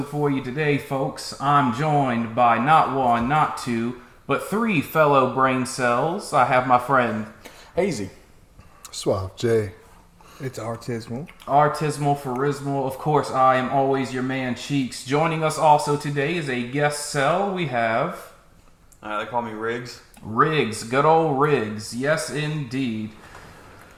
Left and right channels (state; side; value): identical; both; correlation 1.00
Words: for you today, folks. I'm joined by not one, not two, but three fellow brain cells. I have my friend Hazy. Suave J. It's artismal. Artismal Pharismal. Of course, I am always your man, Cheeks. Joining us also today is a guest cell. We have They call me Riggs. Riggs, good old Riggs. Yes, indeed.